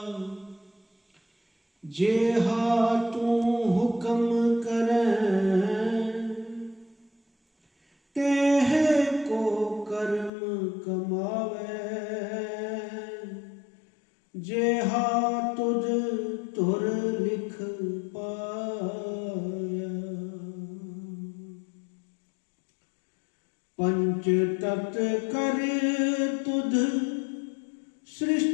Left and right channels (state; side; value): drops out; right; at 10.3 s